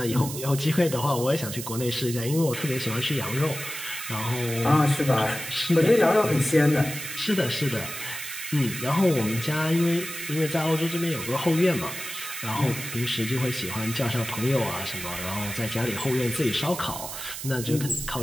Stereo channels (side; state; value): right; noise; hiss, 8 dB below the sound